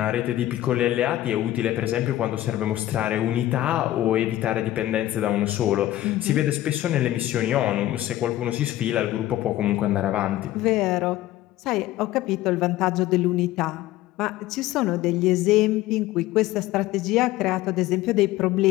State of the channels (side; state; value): right; quieter; 14.7 dB